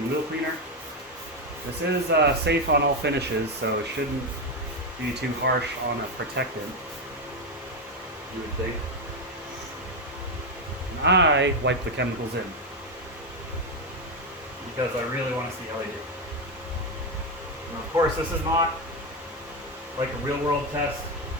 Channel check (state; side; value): normal; both; correlation 0.08